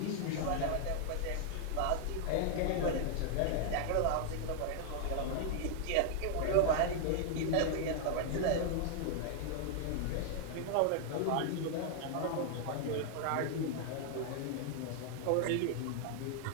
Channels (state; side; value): different; both; correlation 0.00